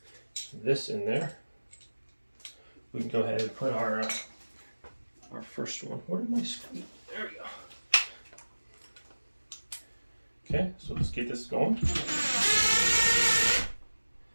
this in there, we can go ahead and put our first one. Where did my screw? There we go. Okay, so let's get this going.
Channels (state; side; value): inverted; both; correlation -1.00